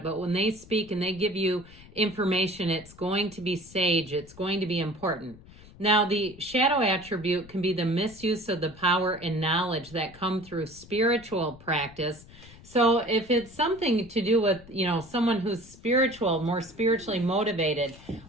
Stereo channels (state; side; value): noise; left; rumble, 21 dB below the sound